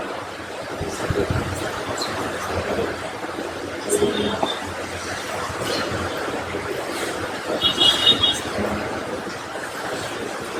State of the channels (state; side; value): identical; both; correlation 1.00